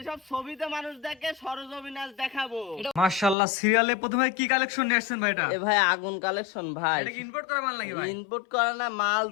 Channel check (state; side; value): drops out; right; at 3.4 s